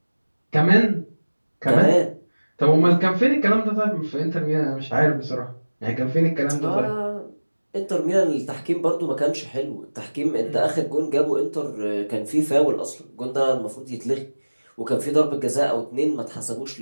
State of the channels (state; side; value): inverted; both; correlation -1.00